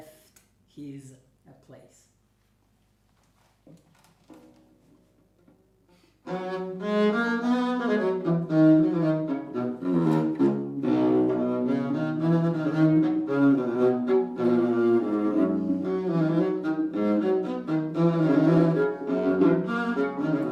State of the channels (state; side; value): identical; both; correlation 1.00